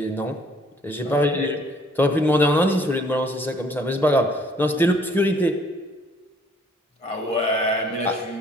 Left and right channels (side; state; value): both; normal; correlation 0.60